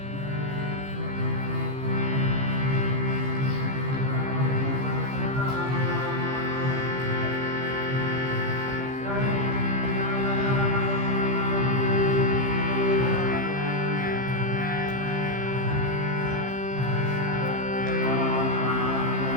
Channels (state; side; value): late; left; 15 ms